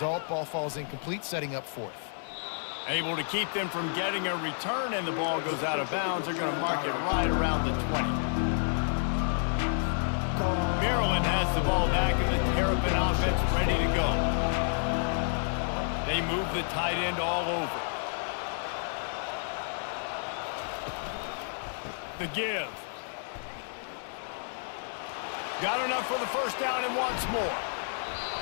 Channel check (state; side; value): silent; right; 58 dB below the other